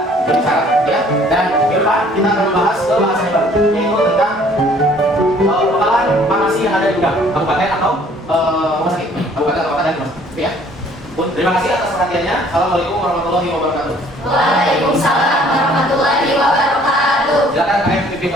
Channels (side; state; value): both; normal; correlation 0.57